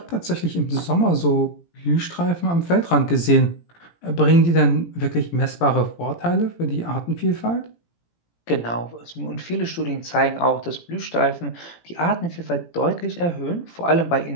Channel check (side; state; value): right; late; 17 ms